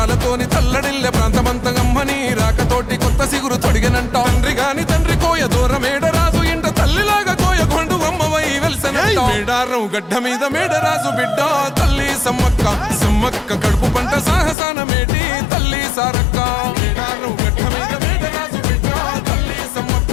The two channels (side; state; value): right; drops out; at 14.6 s